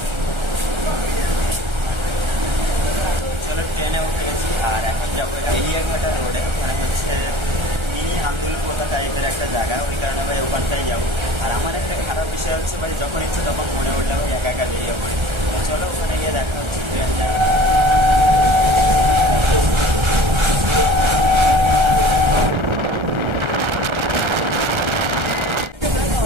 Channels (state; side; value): late; left; 1.3 ms